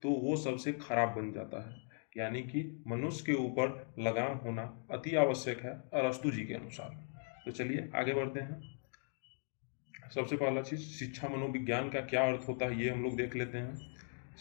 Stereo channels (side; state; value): right; silent; 52 dB below the other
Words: तो वो सबसे खराब बन जाता है। यानी कि मनुष्य के ऊपर लगाम होना अति आवश्यक है अरस्तु जी के अनुसार। तो चलिए आगे बढ़ते हैं। सबसे पहला चीज, शिक्षा मनोविज्ञान का क्या अर्थ होता है ये हम लोग देख लेते हैं।